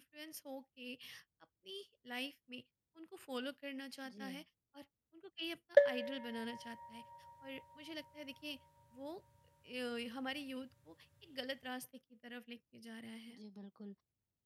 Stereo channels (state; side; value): identical; both; correlation 1.00